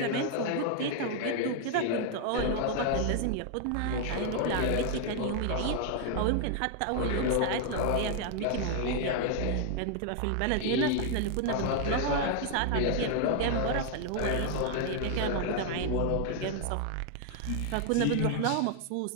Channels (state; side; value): different; both; correlation 0.00